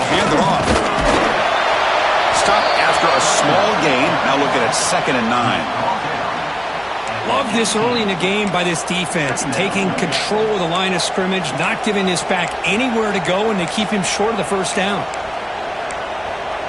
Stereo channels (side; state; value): both; identical; correlation 1.00